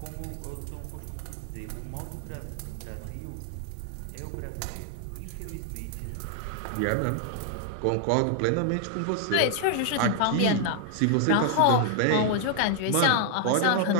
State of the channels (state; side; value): different; both; correlation 0.00